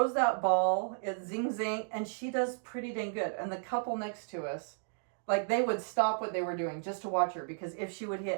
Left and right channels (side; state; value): left; silent; digital silence